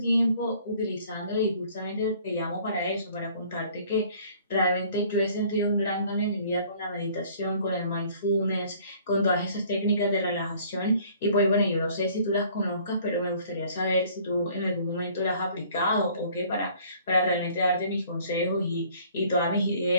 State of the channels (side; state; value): both; inverted; correlation -0.55